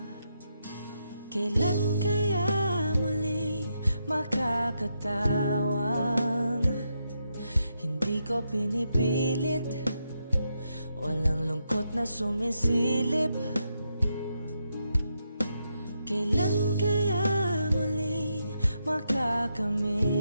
Kailan kaya muling makakatawang hindi ko pinipilit, walang lungkot na sumisilip? Kailan kaya muling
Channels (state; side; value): inverted; both; correlation -0.82